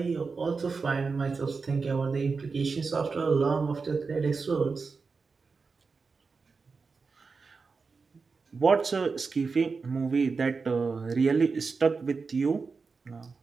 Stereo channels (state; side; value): quieter; left; 4.7 dB